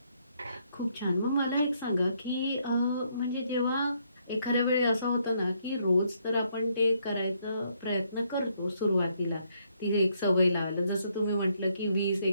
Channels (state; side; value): inverted; both; correlation -0.72